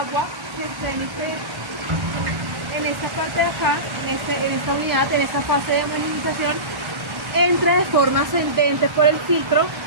se penetre en esta parte de acá, en esta unidad, en esta fase de homogeneización, entra de forma ascendente por el filtro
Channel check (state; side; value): late; left; 1.1 ms